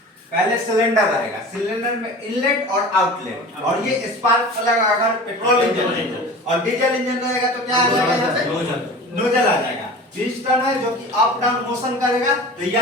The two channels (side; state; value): both; normal; correlation 0.38